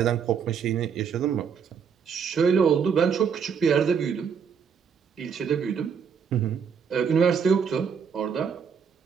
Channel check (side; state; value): left; quieter; 6.7 dB